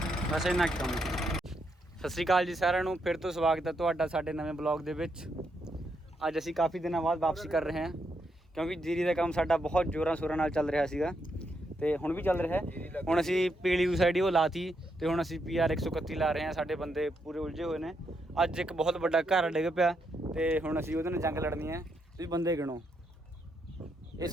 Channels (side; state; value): both; normal; correlation 0.79